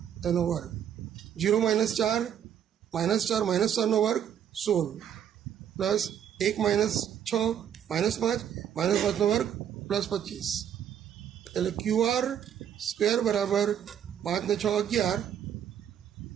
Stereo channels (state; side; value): quieter; left; 9.3 dB